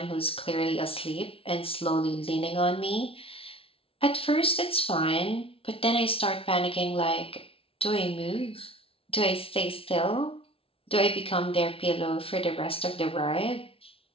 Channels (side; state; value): right; late; 0.26 ms